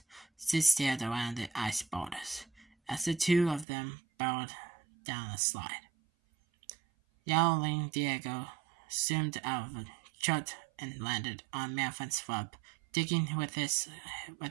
Sid stared around the ice boulders as the two of them barreled down a slide. Yowling, Diego zoomed out of the chute and landed on Manfred's rub, digging with his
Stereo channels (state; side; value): drops out; left; at 3.7 s